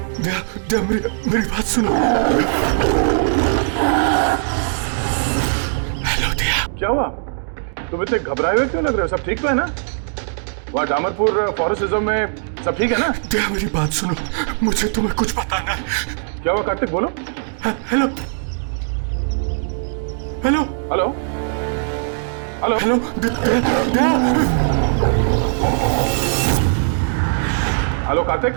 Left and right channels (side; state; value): left; silent; digital silence